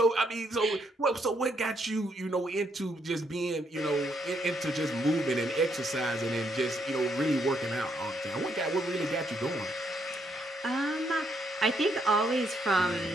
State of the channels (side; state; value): both; normal; correlation 0.74